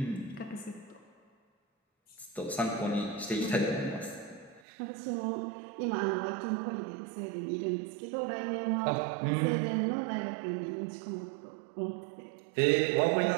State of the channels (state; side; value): drops out; left; at 4.6 s